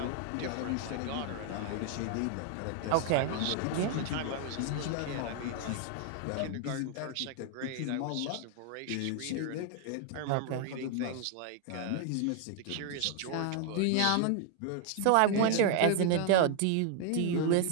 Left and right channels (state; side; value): different; both; correlation 0.00